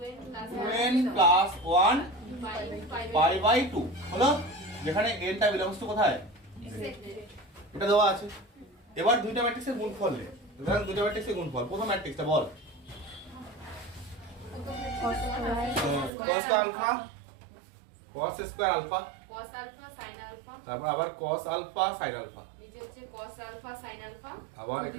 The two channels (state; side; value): drops out; left; at 16.1 s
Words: 2n প্লাস 1 পাই বাই 2 হলো, যেখানে n টা বিলংস টু কোথায়? এটা দেওয়া আছে। এবার দুইটা ম্যাট্রিক্সের গুণফল নে। ধরেন দুইটা ম্যাট্রিক্সের গুণফল, প্রথম ম্যাট্রিক্সটা বল। cos alpha cos square alpha cos alpha sin alpha, তারপর আবার cos আলফা sin আলফা, নিচে হচ্ছে cos আলফা sin আলফা, আবার